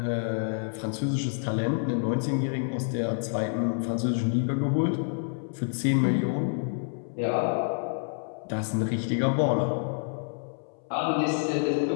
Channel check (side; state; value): right; silent; 59 dB below the other